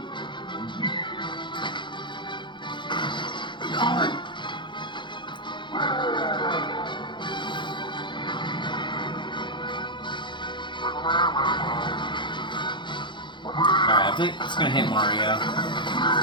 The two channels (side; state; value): right; late; 0.23 ms